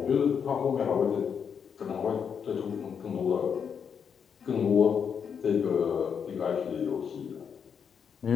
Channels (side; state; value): right; quieter; 7.1 dB